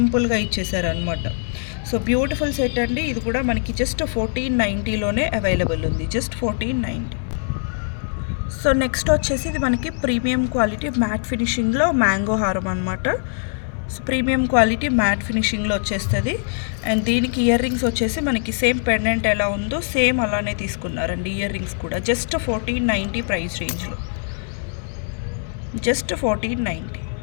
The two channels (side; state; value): right; silent; digital silence